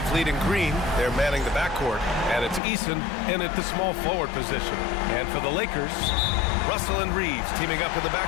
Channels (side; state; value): right; drops out; at 2.6 s